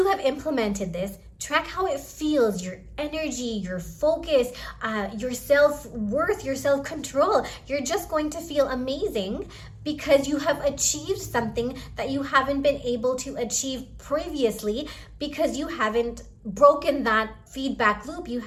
have implemented this, track how it feels, your energy, your focus, your self-worth, your self-control. You're just going to feel amazing because you have achieved something that you haven't been able to achieve previously, because you haven't broken that feedback loop. You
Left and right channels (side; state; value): both; identical; correlation 1.00